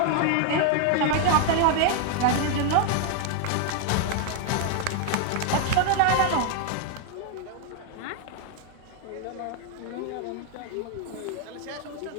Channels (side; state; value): both; different; correlation 0.00